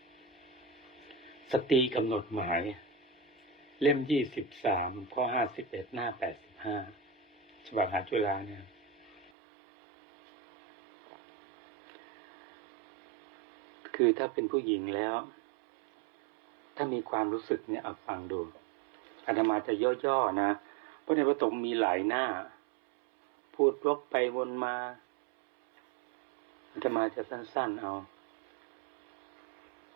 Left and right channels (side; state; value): left; drops out; at 9.3 s